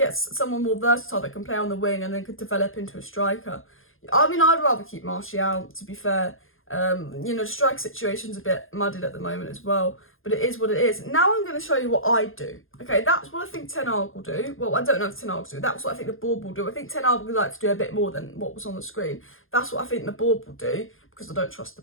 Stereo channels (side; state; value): right; late; 0.60 ms